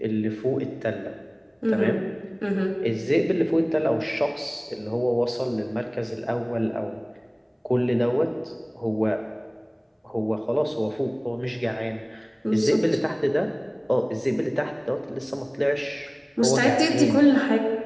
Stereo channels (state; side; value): identical; both; correlation 1.00